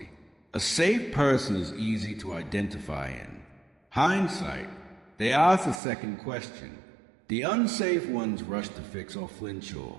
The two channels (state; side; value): drops out; left; at 5.8 s